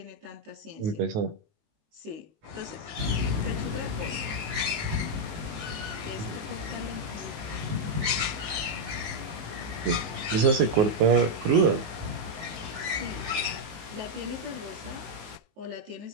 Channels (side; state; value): left; late; 19 ms